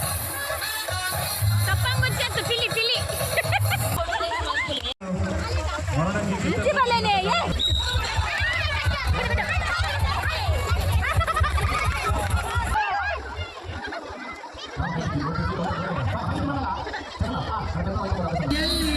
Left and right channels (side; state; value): both; identical; correlation 1.00